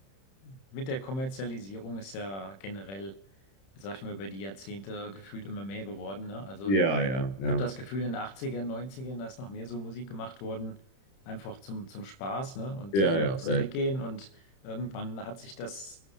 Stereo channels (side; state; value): right; late; 31 ms